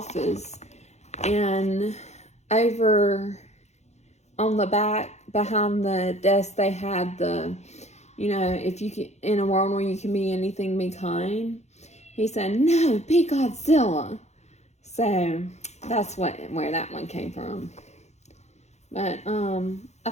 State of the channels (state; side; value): late; right; 0.32 ms